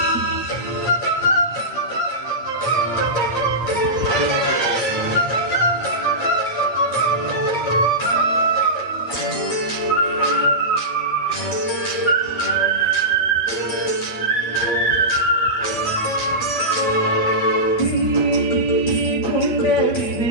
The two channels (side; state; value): right; late; 8.6 ms